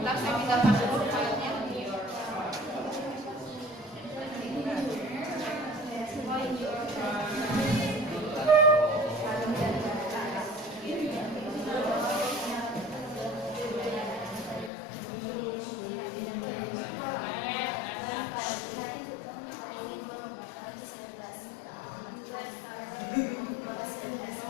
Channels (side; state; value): right; drops out; at 14.7 s